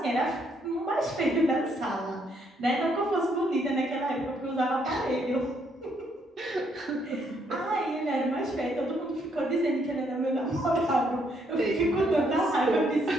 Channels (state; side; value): normal; both; correlation 0.72